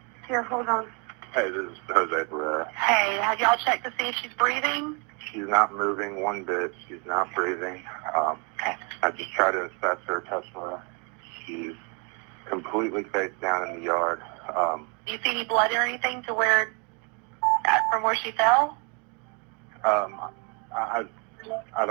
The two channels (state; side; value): quieter; left; 35.3 dB